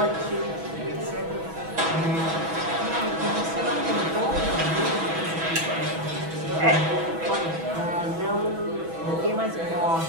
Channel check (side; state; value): left; late; 6.1 ms